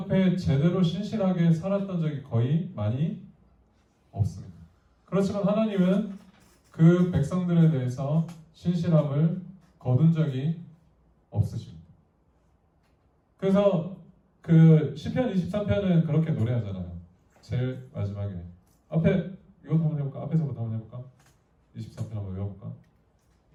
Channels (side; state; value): both; identical; correlation 1.00